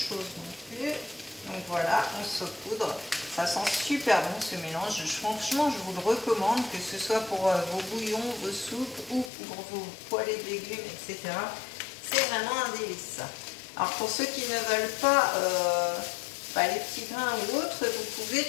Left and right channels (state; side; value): drops out; right; at 9.3 s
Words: non plus. Donc voilà, on saupoudre. Ça sent super bon ce mélange. Franchement, je vous le recommande, que ce soit pour vos bouillons, vos soupes ou pour vos poêlées de légumes, etc. C'est vraiment un délice. Alors pour ceux qui ne veulent pas les petits grains ou autres, vous pouvez